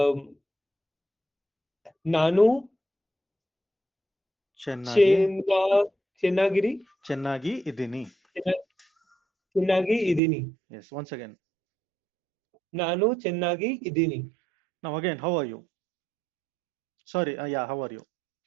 ನಾನು Chennagi. ಚೆನ್ನಾಗಿರಿ Chennagi idini. ಚೆನ್ನಾಗಿ ಇದ್ದೀನಿ Yes. Once again. ನಾನು ಚೆನ್ನಾಗಿ ಇದ್ದೀನಿ Now again, how are you? Sorry. Yeah. How are you?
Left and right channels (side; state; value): left; drops out; at 10.2 s